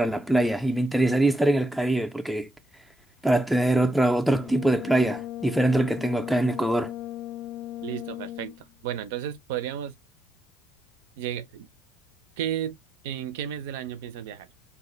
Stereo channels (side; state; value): both; normal; correlation 0.82